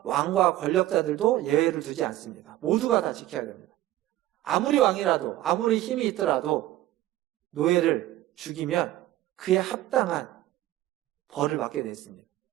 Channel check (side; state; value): left; quieter; 14.9 dB